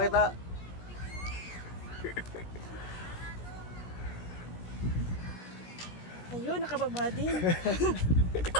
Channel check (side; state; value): right; late; 17 ms